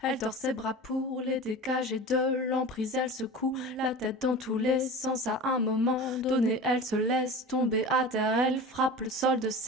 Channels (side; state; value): both; normal; correlation 0.33